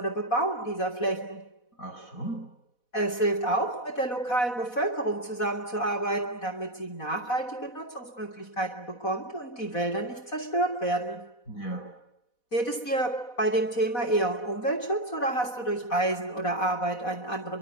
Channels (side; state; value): right; late; 4.1 ms